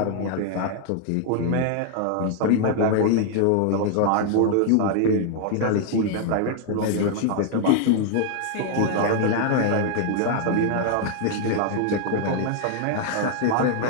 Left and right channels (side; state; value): both; different; correlation 0.00